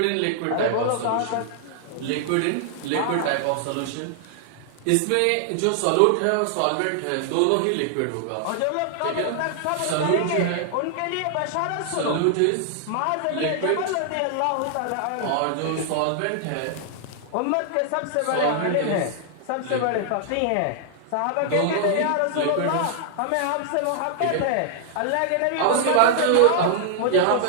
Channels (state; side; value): different; both; correlation -0.01